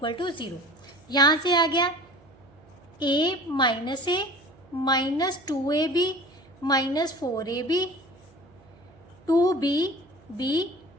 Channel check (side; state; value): right; noise; hum, 30 dB below the sound